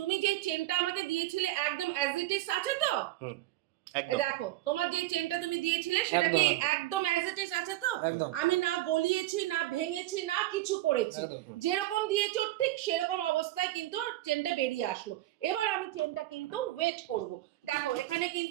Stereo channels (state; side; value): quieter; left; 16.3 dB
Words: তুমি যেই চেনটা আমাকে দিয়েছিলে একদম অ্যাজ ইট ইজ আছে তো, দেখো তোমার যে চেনটা তুমি দিয়েছিলে সেটা কি একদম অ্যাজ ইট ইজ আছে তো? আমি না গলিয়েছি না ভেঙেছি না কিছু করেছি, যেরকম দিয়েছো ঠিক সেরকম অবস্থায় কিন্তু চেনটা বেরিয়ে আসলো। এবার আমি চেনটা কিন্তু ওয়েট করব। দেখো এখানে